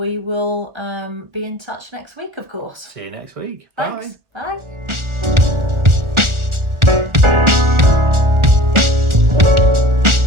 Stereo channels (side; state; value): left; late; 1.4 ms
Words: will be in touch next week, of course. See you next week. Thanks. Bye.